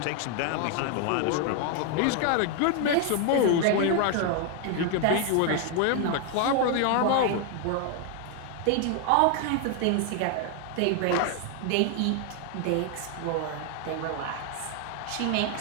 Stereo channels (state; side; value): different; both; correlation 0.00